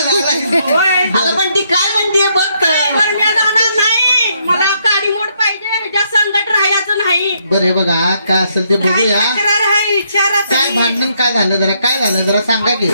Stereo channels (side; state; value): both; inverted; correlation -0.73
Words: आता पण ती काय म्हणते बघ काय बरं मी जाणार नाही मला काडी मोड पाहिजे ह्याच्या संकट राहायचं नाही बरे बघा काय असेल ते काय बघूया तक्रार आहे विचारात काय भांडण काय झालं जरा काय झालं जरा सांगा की